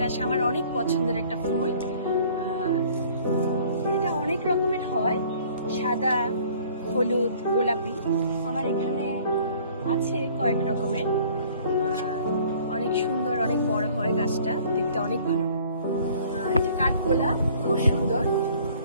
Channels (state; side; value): inverted; both; correlation -0.54